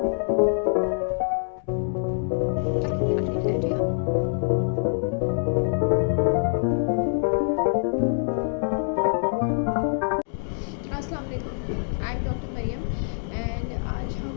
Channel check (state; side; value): silent; right; digital silence